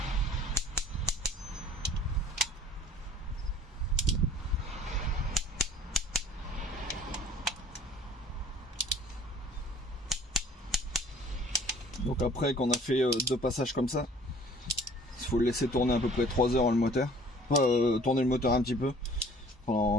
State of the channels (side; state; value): both; normal; correlation 0.52